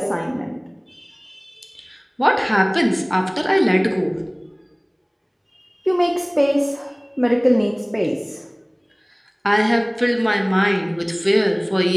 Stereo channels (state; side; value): identical; both; correlation 1.00